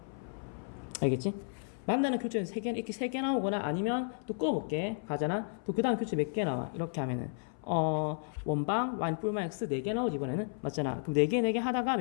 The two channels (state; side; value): silent; right; 56 dB below the other